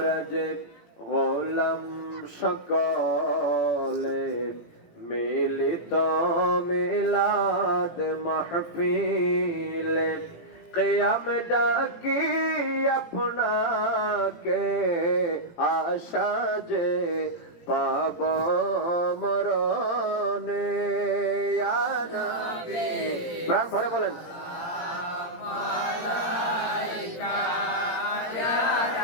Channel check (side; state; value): right; late; 17 ms